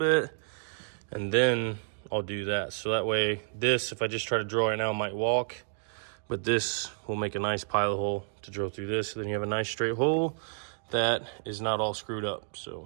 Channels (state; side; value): silent; left; digital silence